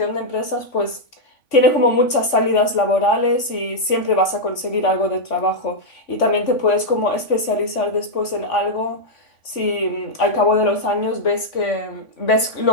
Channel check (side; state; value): right; late; 3.5 ms